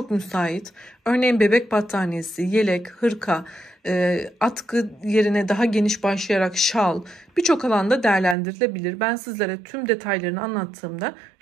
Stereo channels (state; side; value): drops out; left; at 8.3 s